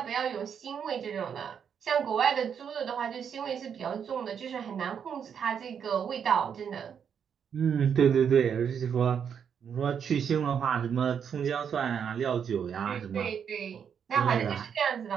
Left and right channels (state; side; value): quieter; left; 7.6 dB